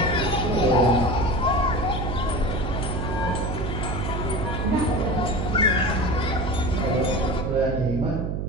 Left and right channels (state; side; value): noise; right; hum, 2 dB below the sound